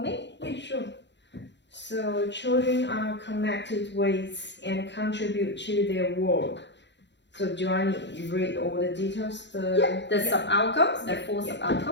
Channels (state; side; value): late; right; 0.52 ms